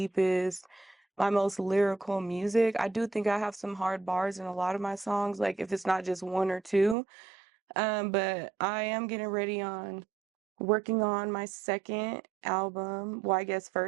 my most lyrical music. I do think I have some hard bars in a lot of my songs, like if it's not just one or two. But I am getting ready on working on my second album. Well, I guess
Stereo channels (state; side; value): drops out; left; at 7.0 s